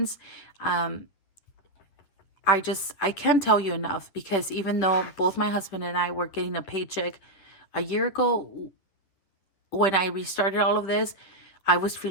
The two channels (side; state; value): right; late; 10 ms